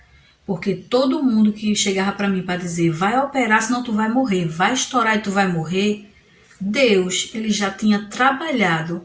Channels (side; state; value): both; identical; correlation 1.00